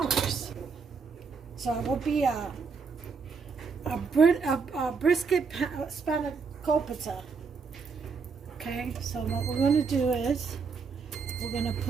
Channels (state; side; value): quieter; left; 5.1 dB